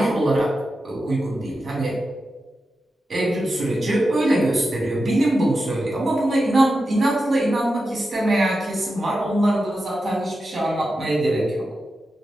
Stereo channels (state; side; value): normal; both; correlation 0.90